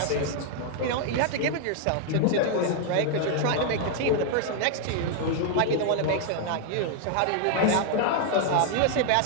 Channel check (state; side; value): different; both; correlation 0.00